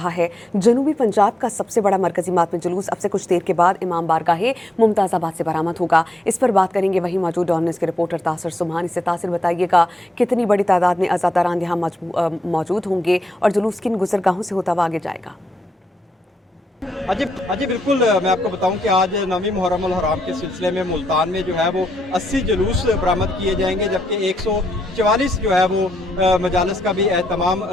है। जनूबी पंजाब का सबसे बड़ा मरकजी मातमी जुलूस अब से कुछ देर के बाद इमाम बारगाह मुमताज़ाबाद से बरामद होगा। इस पर बात करेंगे वहीं मौजूद डॉमिनेंस के रिपोर्टर तासिर सुबहानी से। तासिर, बताइएगा कितनी बड़ी तादाद में अज़ादारान यहाँ मौजूद होंगे और जुलूस किन गुजरगाहों से होता हुआ आगे जाएगा? अजी बिल्कुल, मैं आपको बताऊं कि आज 9वीं मुहर्रम उल हराम के सिलसिले में मुल्तान में जो है वो 80 जुलूस बरामद किए जाएंगे, जबकि 144 जो है वो मजालिस का भी एहतमाम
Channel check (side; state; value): both; normal; correlation 0.81